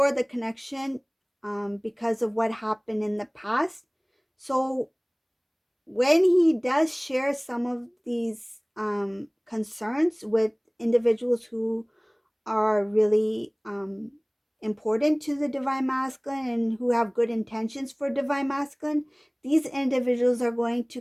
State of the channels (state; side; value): identical; both; correlation 1.00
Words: the connection because of what happened in the past. So when he does share some of these concerns with individuals who are really important to the divine masculine and who have good intentions for divine masculine, these individuals are going to